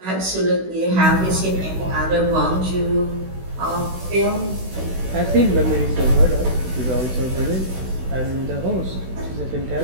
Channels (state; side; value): late; left; 16 ms